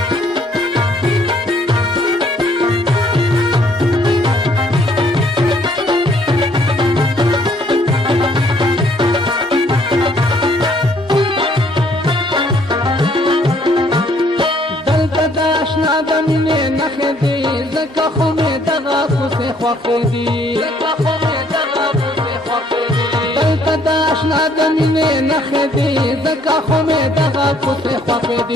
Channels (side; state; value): both; normal; correlation 0.64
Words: دمینه نخې دی زکه خو مې دغه کوسې خوښې دي دلته د اشنا دمینه نخې دی زکه خو مې دغه کوسې خوښې